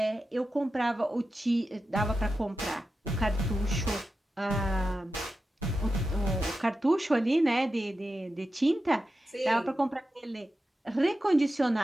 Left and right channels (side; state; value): both; normal; correlation 0.91